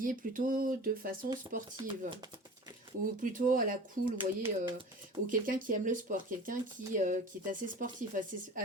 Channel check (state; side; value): normal; both; correlation 0.39